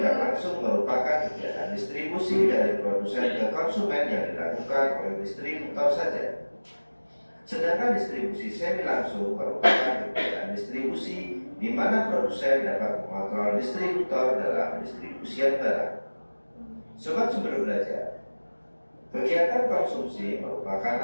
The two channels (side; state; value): both; inverted; correlation -1.00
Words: langsung merupakan kegiatan distribusi dari produsen ke konsumen yang dilakukan oleh distributor saja. Sedangkan distribusi semi langsung merupakan kegiatan distribusi di mana produsen dapat mengontrol distributor dalam pendistribusian barang. Sobat Sumber Belajar, kegiatan konsumsi